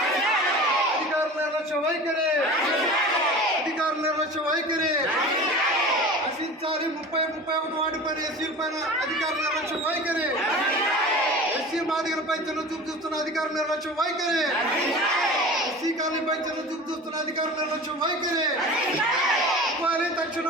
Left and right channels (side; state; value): both; normal; correlation 0.36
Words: అధికారుల నిర్లక్ష్య వైఖరి నశించాలి. 31 వార్డు పైన ఎస్సీల పైన అధికారుల నిర్లక్ష్య వైఖరి, ఎస్సీ మాదిగలపై చిన్న చూపు చూస్తున్న అధికారుల నిర్లక్ష్య వైఖరి, ఎస్సీ కాలనీపై చిన్న చూపు చూస్తున్న అధికారుల నిర్లక్ష్య వైఖరి. ఇవ్వాలి